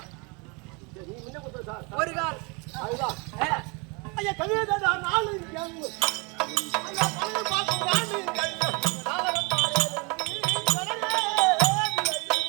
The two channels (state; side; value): quieter; left; 30.8 dB